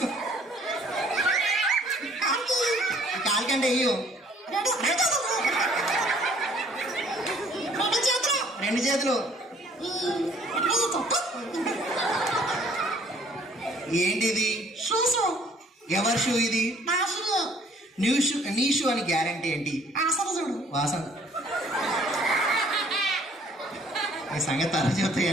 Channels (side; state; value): both; normal; correlation 0.59